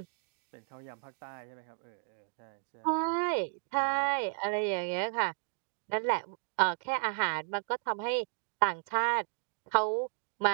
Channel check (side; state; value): left; silent; digital silence